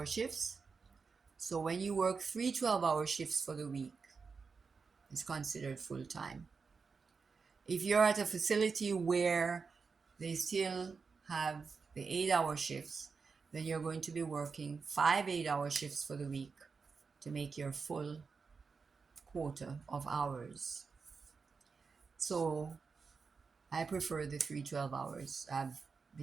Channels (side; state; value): left; quieter; 5.1 dB